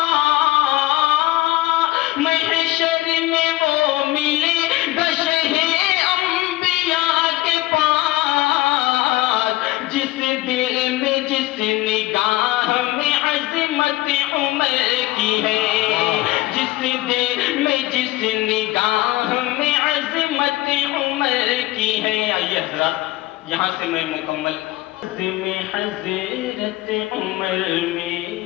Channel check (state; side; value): quieter; right; 18.2 dB